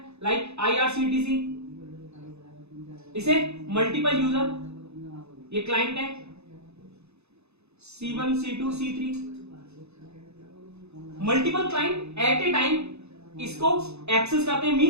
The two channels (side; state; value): left; late; 0.80 ms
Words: लाइक IRCTC, इसे मल्टीपल यूजर, ये क्लाइंट है C1 C2 C3, multiple client at a time इसको एक्सेस करते हैं,